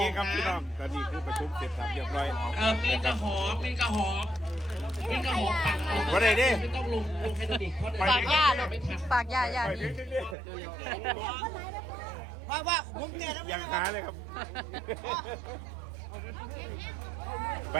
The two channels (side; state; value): left; drops out; at 10.4 s